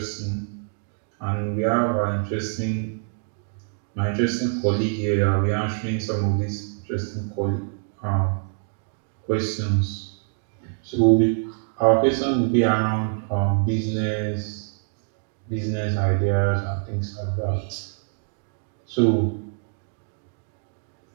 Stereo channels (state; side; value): silent; left; digital silence